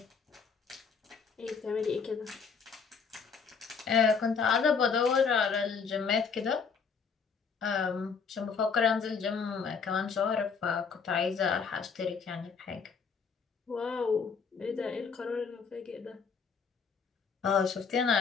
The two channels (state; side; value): quieter; right; 5.7 dB